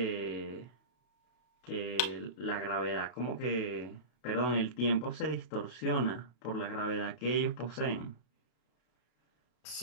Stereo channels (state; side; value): late; right; 33 ms